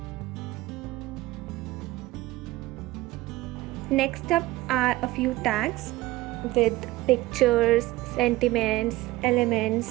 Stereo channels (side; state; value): left; quieter; 18.3 dB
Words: Next up are a few tags with pictures, sentiments,